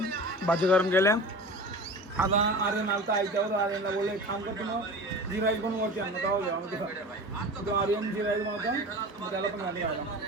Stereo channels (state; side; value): normal; both; correlation 0.34